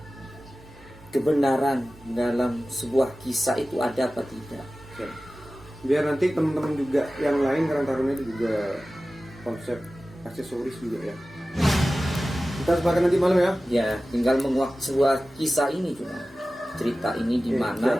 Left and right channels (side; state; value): both; normal; correlation 0.96